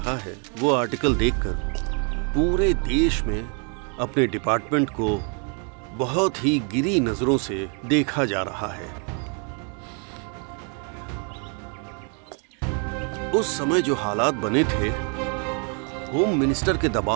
है वो आर्टिकल देखकर पूरे देश में अपने डिपार्टमेंट को बहुत ही गिरी नजरों से देखा जा रहा है। उस समय जो हालात बने थे, होम मिनिस्टर के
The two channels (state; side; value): quieter; left; 39.0 dB